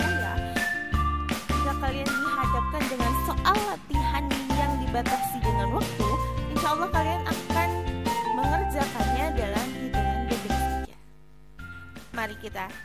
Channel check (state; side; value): identical; both; correlation 1.00